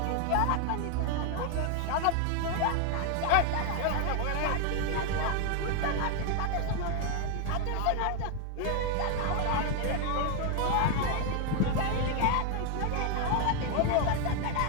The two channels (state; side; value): different; both; correlation 0.01